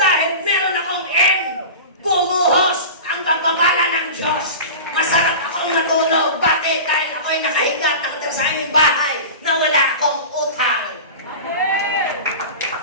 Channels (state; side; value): inverted; both; correlation -0.32